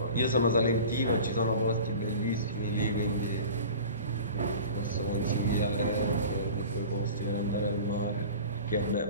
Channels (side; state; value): both; inverted; correlation -0.38